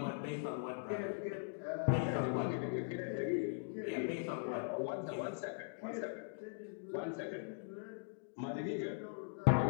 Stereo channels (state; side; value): silent; right; digital silence